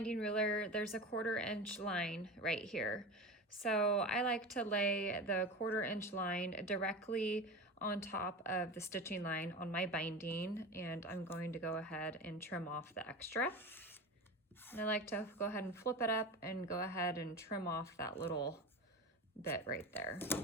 ruler, there's a 1/4 inch line right here. So I like to lay the 1/4 inch line directly on top of the stitching line on my binding, and I'm going to go ahead and trim off the extra. And I like to go ahead and flip it up and go ahead and trim off that little bit right there.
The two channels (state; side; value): normal; both; correlation 0.28